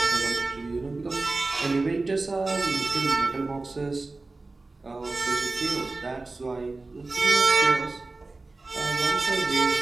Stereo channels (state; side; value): quieter; left; 3.4 dB